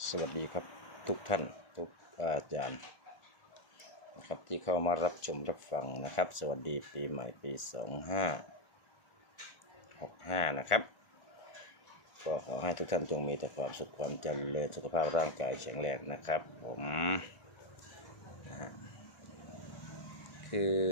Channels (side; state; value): right; late; 1.4 ms